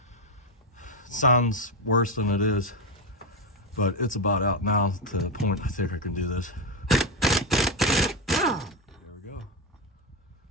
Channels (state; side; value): normal; both; correlation 0.10